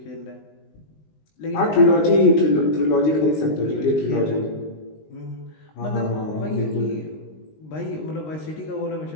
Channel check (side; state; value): right; late; 19 ms